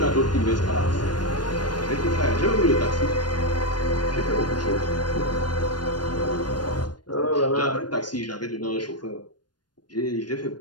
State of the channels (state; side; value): late; right; 0.70 ms